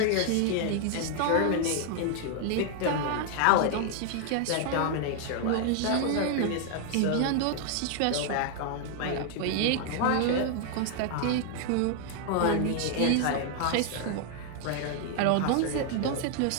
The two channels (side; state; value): both; different; correlation 0.00